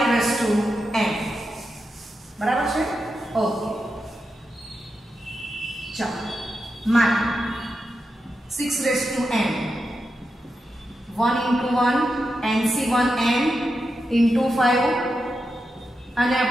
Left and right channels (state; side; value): normal; both; correlation 0.88